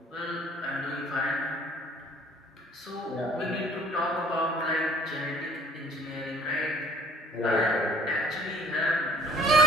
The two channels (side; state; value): both; normal; correlation 0.54